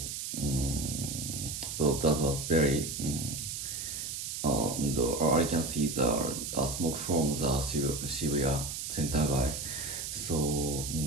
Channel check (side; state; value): right; noise; hiss, 5 dB below the sound